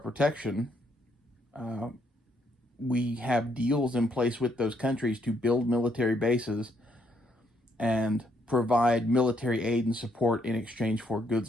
we have deals in place with those countries to build military bases and provide military aid and support in exchange for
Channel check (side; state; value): both; normal; correlation 0.73